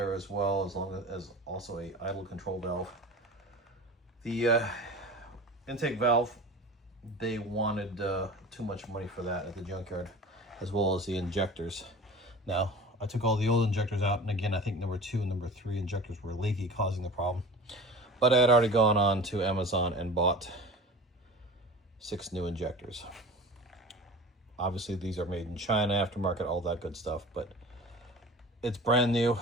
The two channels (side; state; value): both; normal; correlation 0.37